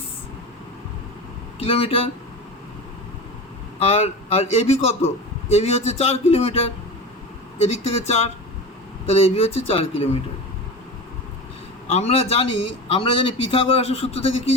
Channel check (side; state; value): both; normal; correlation 0.28